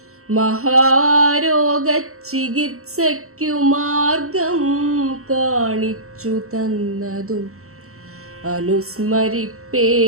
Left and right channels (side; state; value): left; late; 0.63 ms